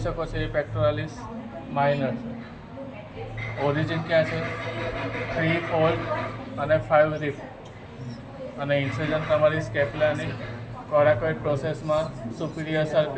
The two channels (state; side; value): identical; both; correlation 1.00